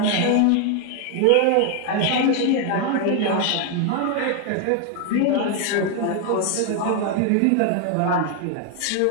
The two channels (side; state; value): both; different; correlation 0.00